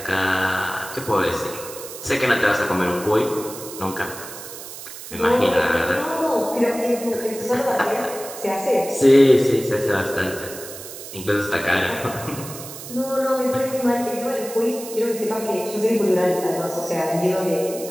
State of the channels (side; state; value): right; noise; hiss, 12 dB below the sound